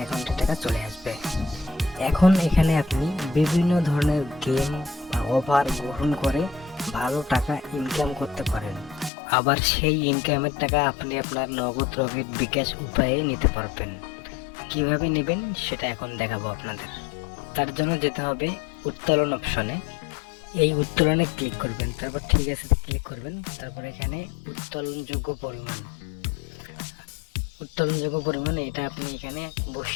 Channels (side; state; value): right; drops out; at 9.1 s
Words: টাকা চলে আসবে। এখন এখানে আপনি বিভিন্ন ধরনের গেম বা অফার গ্রহণ করে ভালো টাকা ইনকাম করতে পারেন। আবার সেই ইনকামের টাকা আপনি আপনার নগদ রকেট বিকাশ উপায়ে নিতে পারবেন। কিভাবে নেবেন সেটা এখন দেখাবো আপনাদের। তার জন্য যেতে হবে উত্তোলন অপশনে। এই উত্তোলনে ক্লিক করবেন, তারপর ঠিক আছে ক্লিক করবেন। তারপর এখানে উত্তোলনযোগ্য পরিমাণ এটা আপনি এখানে